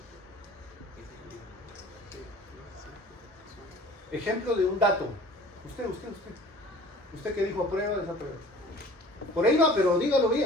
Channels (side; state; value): both; normal; correlation 0.46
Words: ejemplo de un dato. Usted que dijo aprueba, desaprueba. Por ahí va, pero dígalo